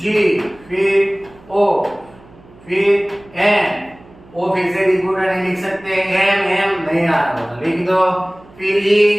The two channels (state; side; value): noise; right; hum, 25 dB below the sound